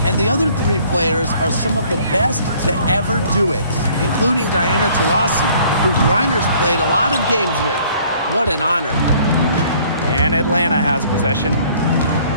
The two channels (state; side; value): inverted; both; correlation -0.57